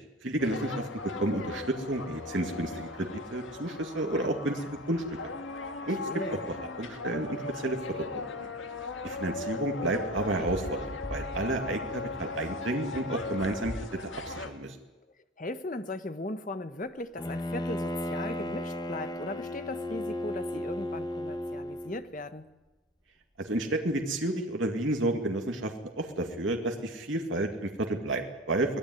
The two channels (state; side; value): normal; both; correlation 0.37